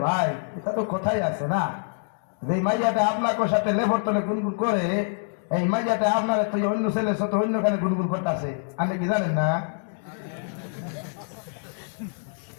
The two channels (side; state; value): right; silent; digital silence